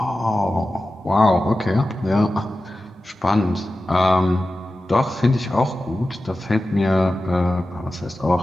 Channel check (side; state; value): both; normal; correlation 0.94